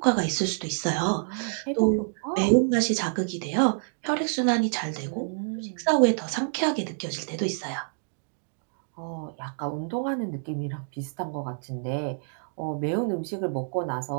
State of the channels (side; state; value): left; silent; digital silence